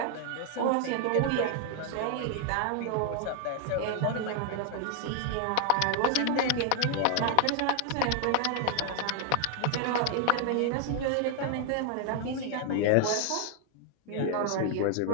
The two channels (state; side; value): different; both; correlation 0.00